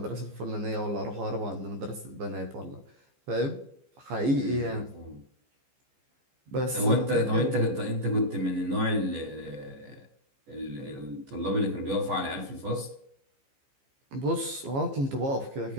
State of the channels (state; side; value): late; left; 15 ms